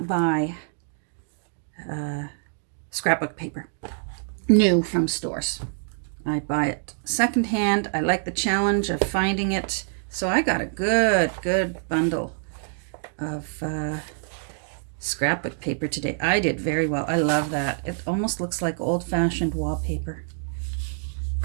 buy scrapbook paper new from stores. I buy it secondhand. I like the challenge of finding it So I got a good bundle of scrapbook paper today. I did very well. I love that. It almost looks like old-fashioned wallpaper.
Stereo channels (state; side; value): silent; left; digital silence